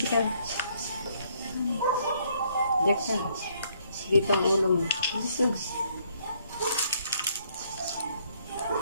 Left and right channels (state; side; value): inverted; both; correlation -0.68